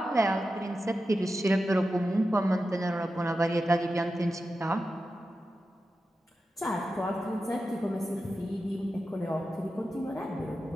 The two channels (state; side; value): normal; both; correlation 0.91